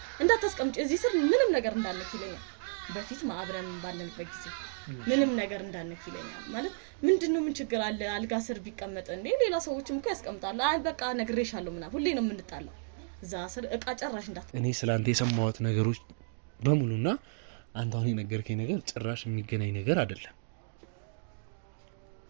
እንዳታስቀምጪ እዚህ ስር ምንም ነገር እንዳነክ ይለኛል በፊት ማብረን ባለንበት ጊዜ ምንም ነገር እንዳነክ ይለኛል ማለት ምንድነው ምን ችግር አለ አልጋ ስር ቢቀመጥ እንዴ ሌላ ሰዎችም እኮ ያስቀምጣሉ አይ በቃ ነግሬሻለሁ ምናምን ሁሌ ነው የምንጣለው እዛ ስር ዕቃ ጨራሽ እንዳት እኔ ስላንተ የሰማሁት ነገሮች በሙሉና አንተ አሁን የነገርከኝ ነገር ጭራሽ የሚገናኝ ነገር አይደለም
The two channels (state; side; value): silent; left; digital silence